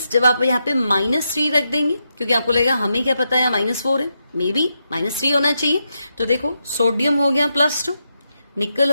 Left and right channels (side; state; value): both; inverted; correlation -0.84